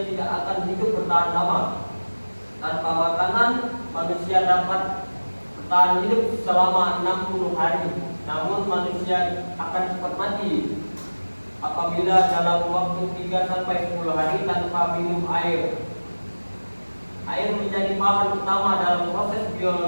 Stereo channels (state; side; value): inverted; both; correlation -1.00